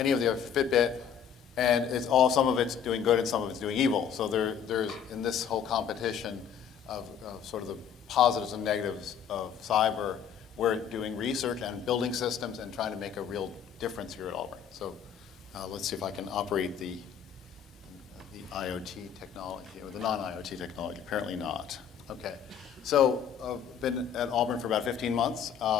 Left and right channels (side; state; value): right; quieter; 8.0 dB